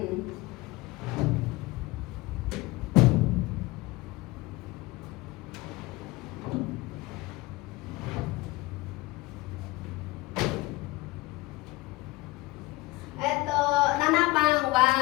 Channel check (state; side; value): quieter; right; 20.8 dB